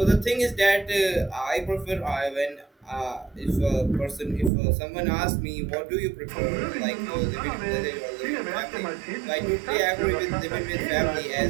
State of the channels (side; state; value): left; drops out; at 4.5 s